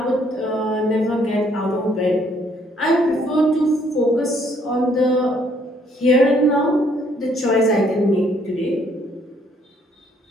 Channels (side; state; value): both; normal; correlation 0.66